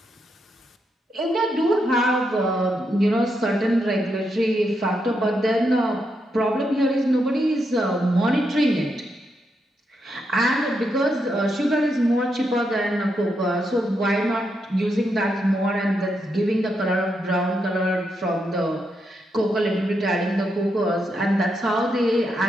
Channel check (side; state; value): both; normal; correlation 0.82